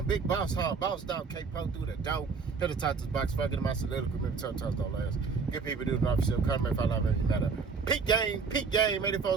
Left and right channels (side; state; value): left; quieter; 5.0 dB